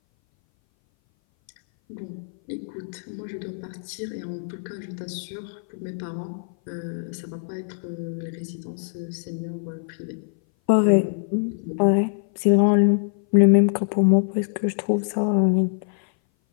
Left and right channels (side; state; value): right; silent; 59 dB below the other